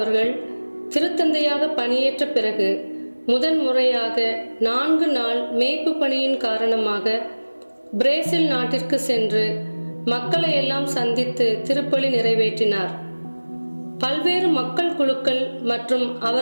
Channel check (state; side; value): inverted; both; correlation -1.00